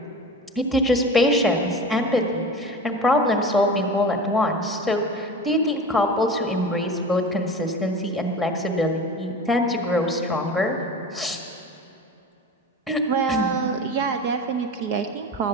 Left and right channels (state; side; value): normal; both; correlation 0.33